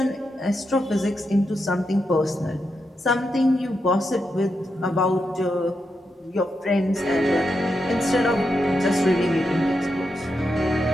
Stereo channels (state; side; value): normal; both; correlation 0.85